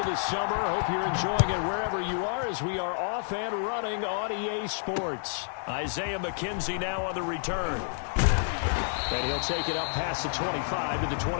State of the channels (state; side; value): silent; right; digital silence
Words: the summer. Hope you're enjoying it wherever you are as we are off and running on EA Sports. Isaiah McKenzie now on the return. And he'll take it up past the 25 to the